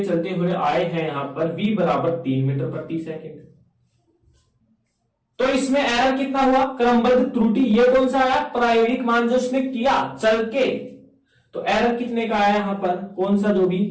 हुए आए हैं यहां पर v बराबर 3 मीटर प्रति सेकंड। तो इसमें एरर कितना हुआ, क्रमबद्ध त्रुटि। ये कौन सा आया, प्रायोगिक मान जो उसने किया चल के। तो एरर कितने का आया यहां पर, कौन सा जो भी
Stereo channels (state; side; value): identical; both; correlation 1.00